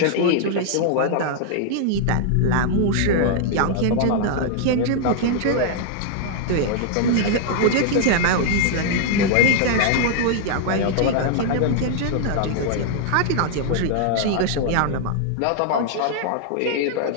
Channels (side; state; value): both; different; correlation 0.00